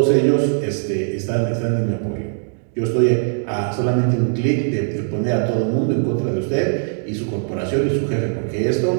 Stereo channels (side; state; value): left; silent; digital silence